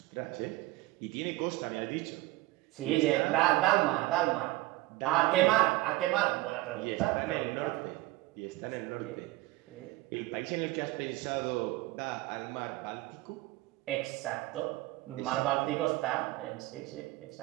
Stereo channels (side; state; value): left; quieter; 18.7 dB